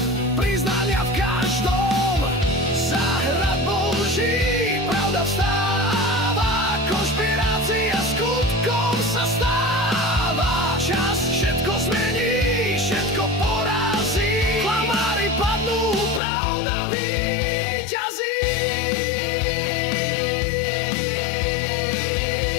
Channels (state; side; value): drops out; right; at 16.2 s